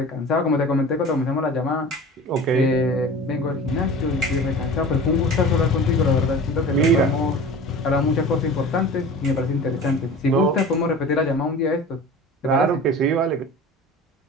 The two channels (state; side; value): normal; both; correlation 0.37